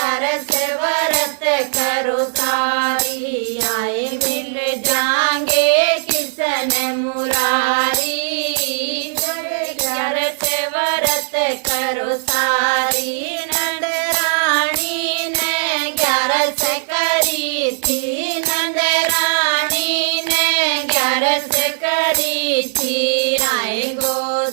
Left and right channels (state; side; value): silent; left; digital silence